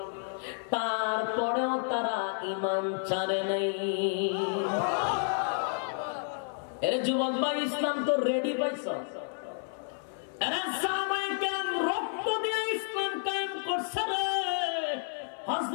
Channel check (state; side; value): silent; right; 57 dB below the other